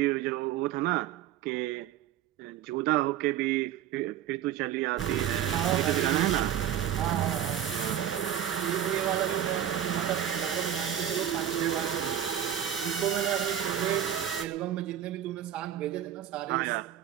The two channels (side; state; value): left; quieter; 10.3 dB